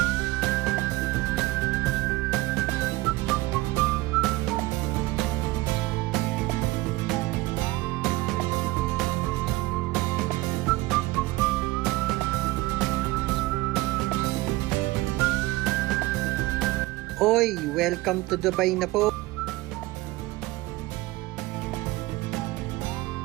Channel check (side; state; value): left; quieter; 19.7 dB